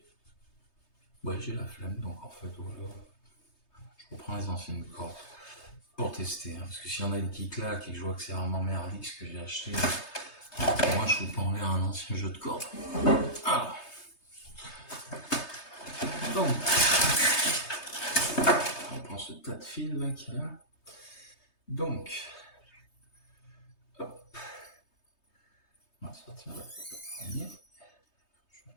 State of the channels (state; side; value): late; right; 3.2 ms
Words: la flemme, donc en fait, voilà, je reprends les anciennes cordes pour tester, hein, parce que s'il y en a une qui claque et que je vois que c'est vraiment merdique ce que j'ai acheté, moi je vous pas en l'air un ancien jeu de cordes. Alors, donc, on prend ce tas de fils là qu'il y a là. Donc, hop, on va sortir le premier, je vais